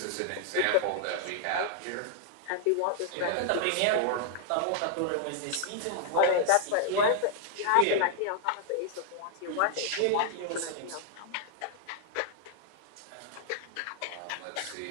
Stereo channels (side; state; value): both; different; correlation -0.01